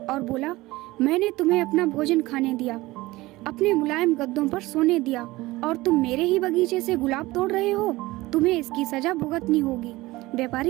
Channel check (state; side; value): quieter; left; 19.5 dB